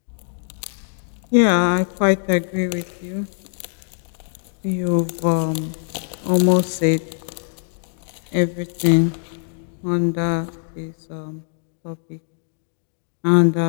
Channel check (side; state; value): right; silent; 64 dB below the other